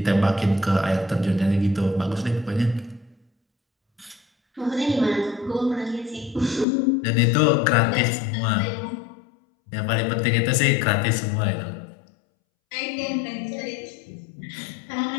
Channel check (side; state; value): right; drops out; at 6.7 s